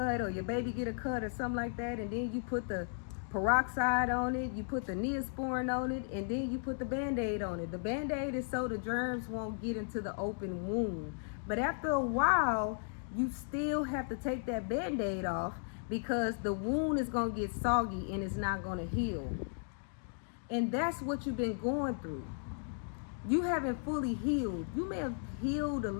or your baby get a cut or something like that, and then you put the peroxide on it, you put the Neosporin on it, and then you put the band-aid on it. The band-aid is so the germs won't get into the open wound. But after a while, you still have to take that band-aid off, because the wound is going to get soggy and it's not going to heal. And that's what you've been going through. You haven't fully healed. You may have healed a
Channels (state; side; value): silent; right; digital silence